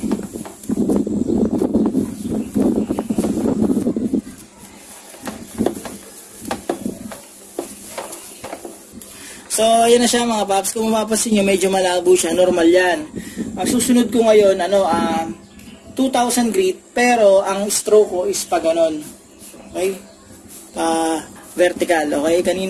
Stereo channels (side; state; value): both; identical; correlation 1.00